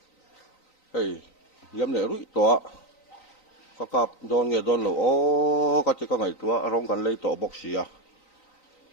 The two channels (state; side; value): late; right; 3.9 ms